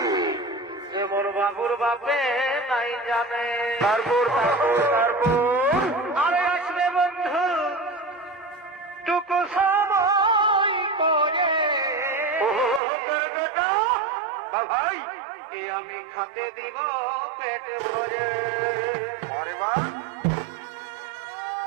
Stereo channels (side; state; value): left; drops out; at 12.8 s